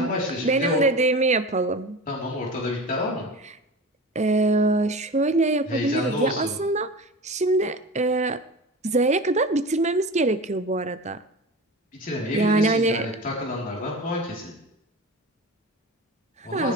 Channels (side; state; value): both; normal; correlation 0.31